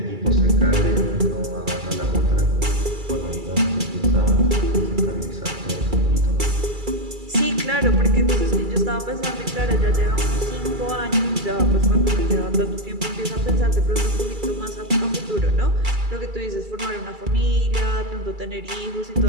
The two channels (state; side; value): late; left; 2.3 ms